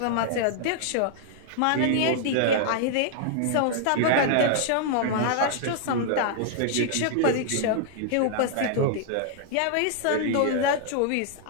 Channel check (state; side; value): different; both; correlation 0.00